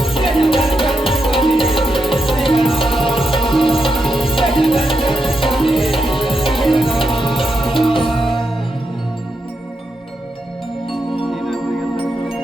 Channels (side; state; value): both; normal; correlation 0.84